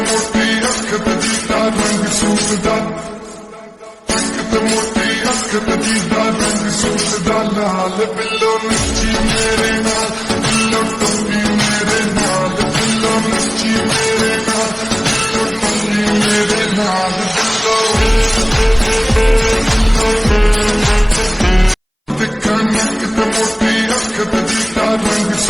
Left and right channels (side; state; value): both; identical; correlation 1.00